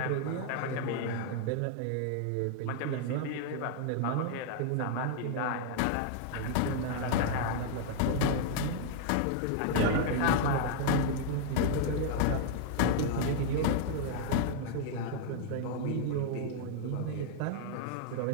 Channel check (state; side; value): different; both; correlation 0.00